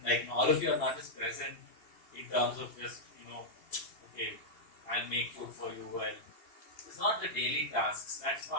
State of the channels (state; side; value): late; right; 2.7 ms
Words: like all of you are not just present in terms of just, okay, I'll make food for you, it's not the daily tasks, that's